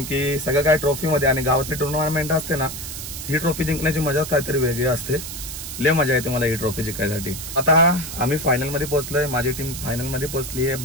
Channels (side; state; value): right; noise; hiss, 8 dB below the sound